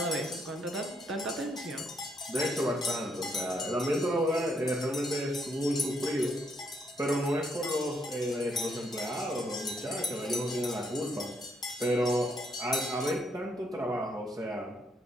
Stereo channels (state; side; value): normal; both; correlation 0.74